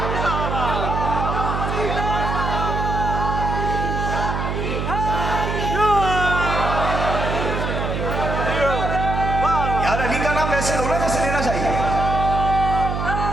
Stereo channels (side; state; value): right; noise; hum, 2 dB below the sound